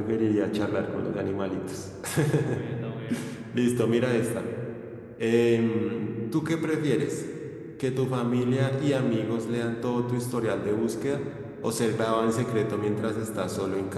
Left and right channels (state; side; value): identical; both; correlation 1.00